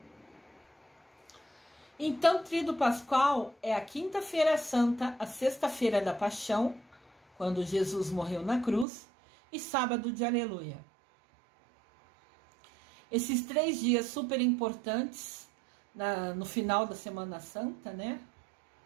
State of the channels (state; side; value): drops out; left; at 8.8 s